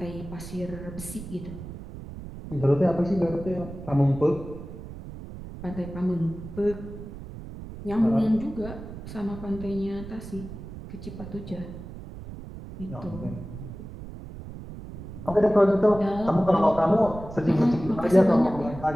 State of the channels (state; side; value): noise; right; rumble, 12 dB below the sound